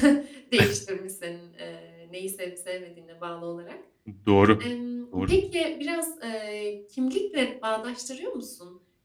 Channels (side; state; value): both; identical; correlation 1.00